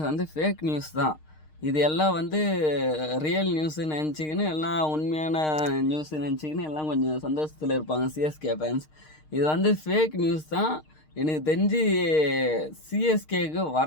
வந்து ஃபேக் நியூஸ் தான். இது எல்லாம் வந்து ரியல் நியூஸு நினச்சிக்கின்னு எல்லாம் உண்மையான நியூஸு நினச்சிக்கின்னு எல்லாம் கொஞ்சம் சந்தோஷத்தில் இருப்பாங்க சிஎஸ்கே ஃபேன்ஸ். இது வந்து ஃபேக் நியூஸ் தான். எனக்கு தெரிஞ்சு சிஎஸ்கேக்கு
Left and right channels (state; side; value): late; right; 6.5 ms